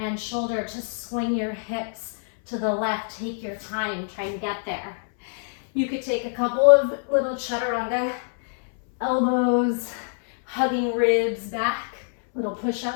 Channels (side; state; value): right; silent; 62 dB below the other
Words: shoulder to swing your hips to the left. Take your time, try and get there. You could take a couple of little chaturanga, elbows, hugging ribs back, little